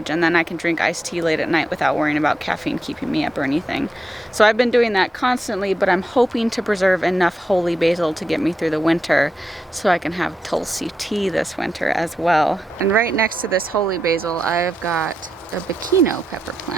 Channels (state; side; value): normal; both; correlation 0.86